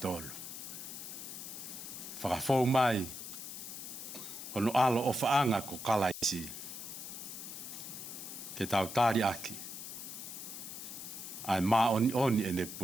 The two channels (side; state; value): left; noise; hiss, 9 dB below the sound